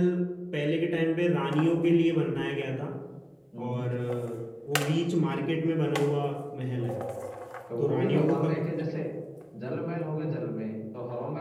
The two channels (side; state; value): both; identical; correlation 1.00